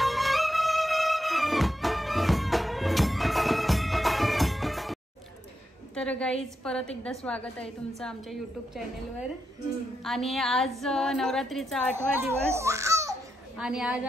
तर गाईज परत एकदा स्वागत आहे तुमचं आमच्या यूट्यूब चॅनलवर. आणि आज नवरात्रीचा 8वा दिवस आणि आज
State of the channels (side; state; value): both; normal; correlation 0.85